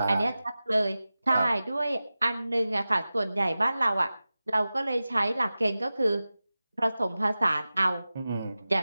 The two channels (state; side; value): inverted; both; correlation -0.96